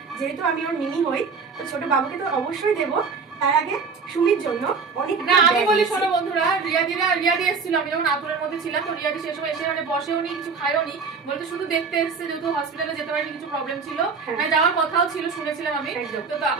যেহেতু আমি ওর মিনি হই, তো ছোট বাবুকে তো অবশ্যই দেবো। তার আগে সুমির জন্য অনেক না আমি বলি শোনো বন্ধুরা, রিয়াদি এসেছিল, আমি যখন আতুরের মধ্যে ছিলাম, তো রিয়াদি সেই সময় এসে মানে বসেও নি, কিছু খায়ও নি, বলতে শুধু দেখতে এসেছে, যেহেতু হসপিটালে যেতে পারিনি, কিছু প্রবলেম ছিল, মানে যাওয়ার কথাও ছিল, শুনেছিলাম আমি। তো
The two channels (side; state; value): left; quieter; 5.1 dB